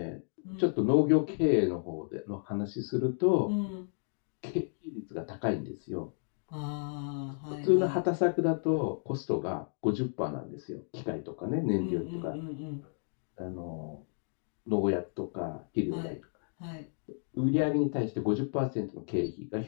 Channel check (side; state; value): right; silent; digital silence